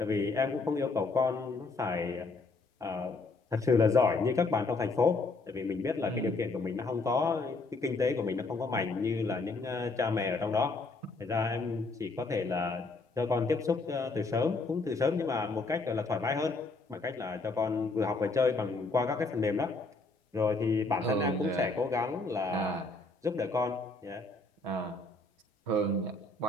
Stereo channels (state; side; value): quieter; right; 3.5 dB